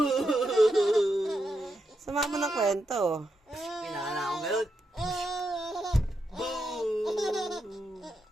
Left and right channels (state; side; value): normal; both; correlation 0.84